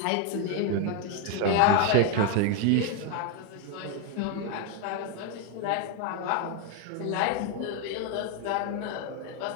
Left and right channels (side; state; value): both; different; correlation 0.01